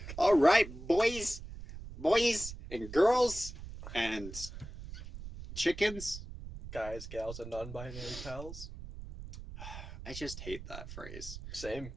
All right, boys and girls and chickens. Guys, gals, and non-binary pals. I just hate that phrase. Same.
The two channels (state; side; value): noise; right; rumble, 11 dB below the sound